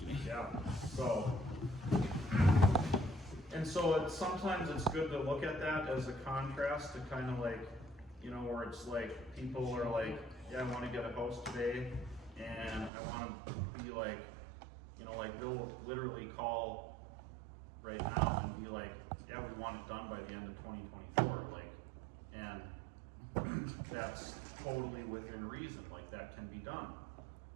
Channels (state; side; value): drops out; left; at 12.9 s